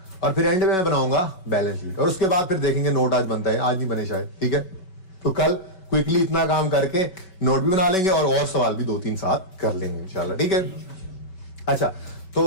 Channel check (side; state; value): right; late; 5.3 ms